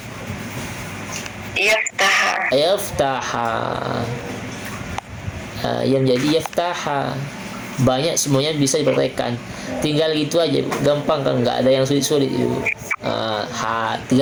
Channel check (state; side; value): identical; both; correlation 1.00